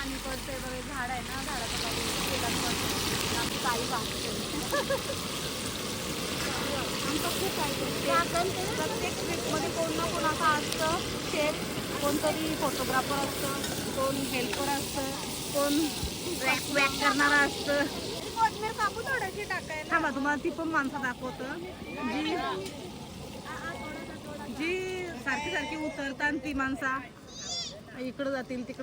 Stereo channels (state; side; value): identical; both; correlation 1.00